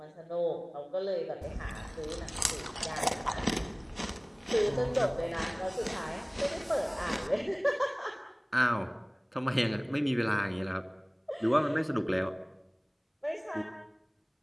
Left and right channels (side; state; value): both; identical; correlation 1.00